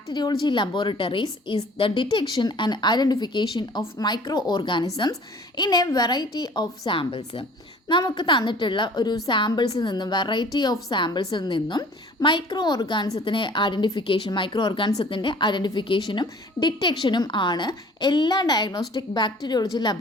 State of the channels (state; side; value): normal; both; correlation 0.49